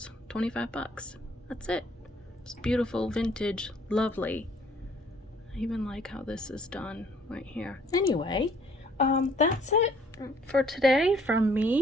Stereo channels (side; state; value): both; normal; correlation 0.60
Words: 25 bucks. That's it. It's beautiful, vintage, lovely. I even like how this is done right here. Anyway, that's it for today from